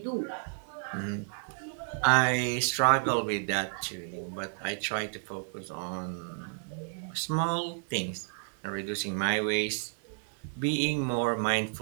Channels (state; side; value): silent; left; digital silence